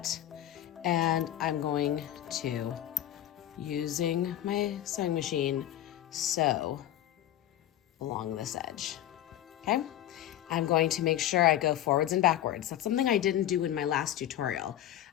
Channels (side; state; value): right; quieter; 12.4 dB